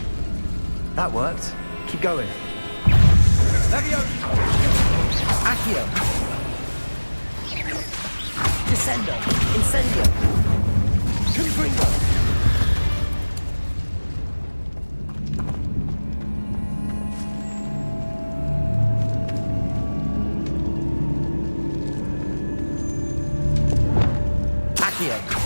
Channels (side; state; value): both; inverted; correlation -1.00